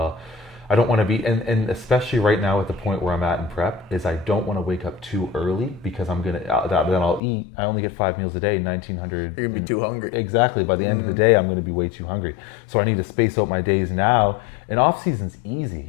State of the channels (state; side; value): drops out; right; at 7.2 s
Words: I don't want to be, and especially right now at the point where I'm at in prep, is I don't want to wake up too early because I'm gonna then I'll eat. I only get 5 meals a day, 1,900. You're gonna be too hungry. Exactly. By the end of the day, I'm gonna be way too hungry. So I need to space out my days now. And off season's easy.